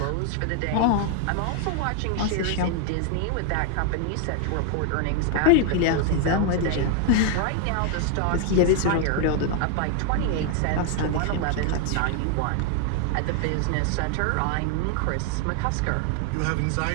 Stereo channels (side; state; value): both; different; correlation 0.00